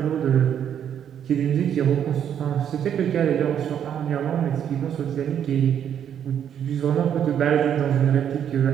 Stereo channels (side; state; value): left; quieter; 9.1 dB